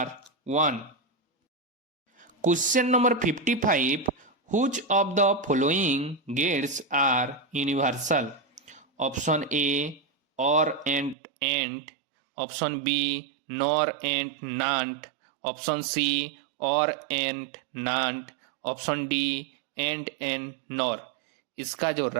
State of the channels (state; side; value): drops out; left; at 11.2 s